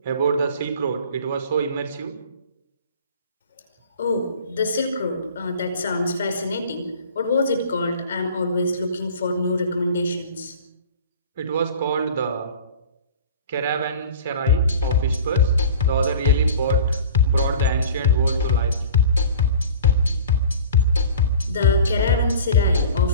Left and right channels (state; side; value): inverted; both; correlation -0.42